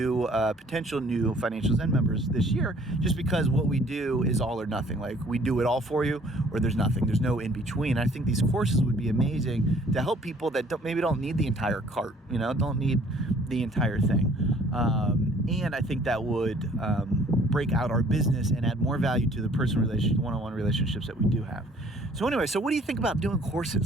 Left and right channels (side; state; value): both; normal; correlation 0.57